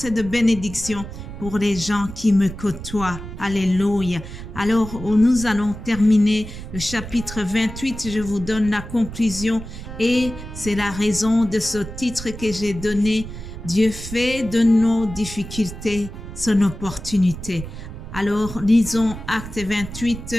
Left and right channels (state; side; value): noise; right; rumble, 11 dB below the sound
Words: de bénédiction pour les gens qui me côtoient. Alléluia. Alors, nous allons terminer le chapitre 28. Je vous donne la conclusion et c'est la raison de ce titre que j'ai donné. Dieu fait de nos difficultés son opportunité. Alors, lisons Acte 28